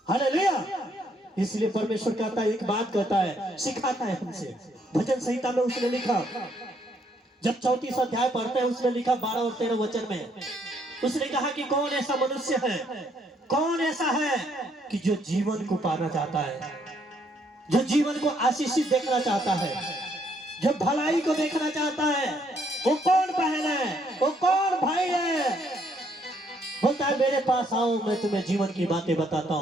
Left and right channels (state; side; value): normal; both; correlation 0.70